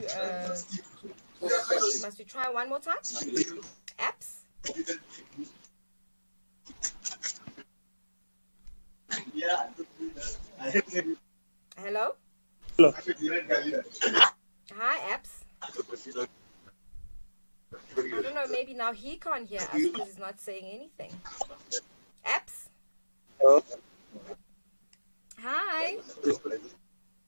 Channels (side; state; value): both; inverted; correlation -1.00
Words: Must we try one more time? Apps. Hello. Hello. Hi, apps. I don't know, maybe now he can't hear us because he's not saying anything. Apps? Hello. Hi.